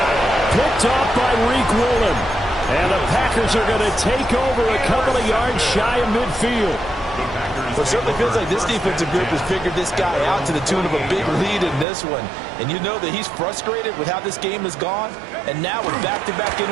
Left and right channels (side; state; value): left; drops out; at 11.9 s